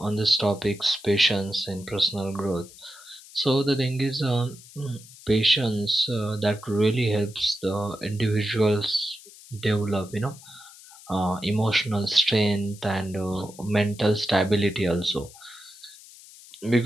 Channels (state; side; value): noise; left; hiss, 20 dB below the sound